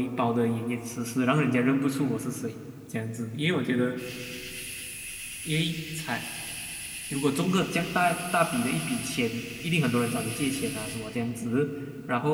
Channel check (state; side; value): identical; both; correlation 1.00